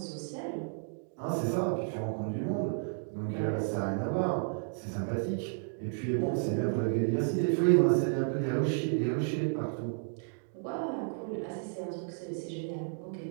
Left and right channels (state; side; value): silent; left; digital silence